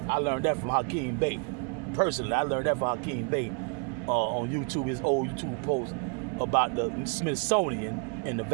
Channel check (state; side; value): quieter; left; 36.8 dB